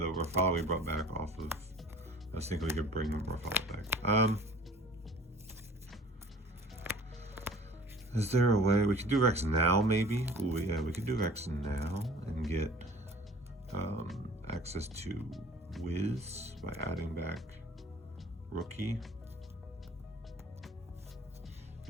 Rafala we brought back off of, I was thinking we could bring Rafala back. Is there a way we could do Rex now, maybe? Ooh, yeah, we could do Rex now and get access to Wiz by adding back Rookie.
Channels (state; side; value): normal; both; correlation 0.46